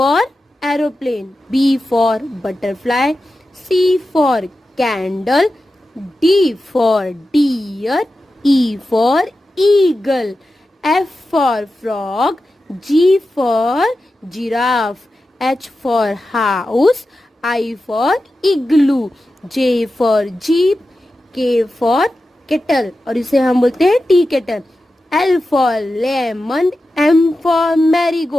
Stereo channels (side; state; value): both; normal; correlation 0.92